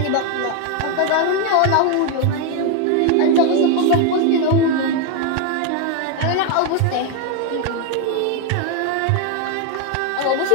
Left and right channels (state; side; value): different; both; correlation 0.01